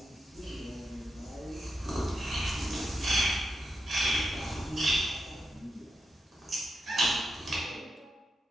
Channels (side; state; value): both; normal; correlation 0.86